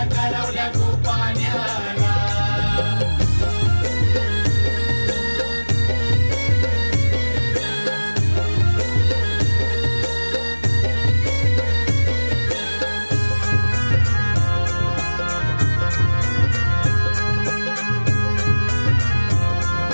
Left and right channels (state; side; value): inverted; both; correlation -1.00